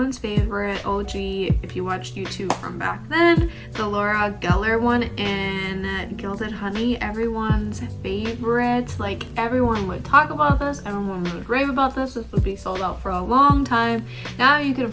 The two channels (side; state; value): both; identical; correlation 1.00